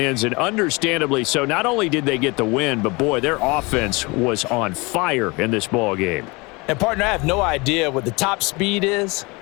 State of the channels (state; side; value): quieter; right; 26.2 dB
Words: and understandably so. Not only did they get the win, but, boy, their offense was on fire in this ball game. And, partner, I have no idea what the top speed is